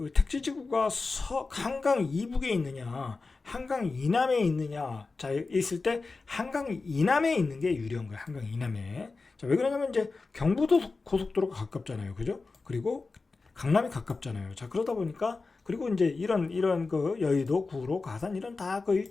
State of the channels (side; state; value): right; quieter; 4.0 dB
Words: 택지지구가 한강 이북에 있느냐, 한강 이남에 있느냐, 자 있을 때 한강 이남에 있는 게 유리한 거예요. 한강 이남에. 자, 왜 그러냐면 이제 경부도 고속도로가 가깝잖아요, 그죠? 그리고 강남이 가깝잖아요. 자, 그러다 보니까 그리고 이제 이런 여의도, 구로, 가산 이런 다